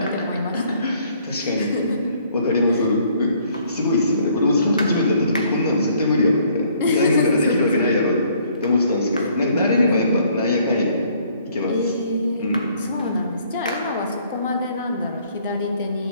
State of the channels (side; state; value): both; inverted; correlation -0.63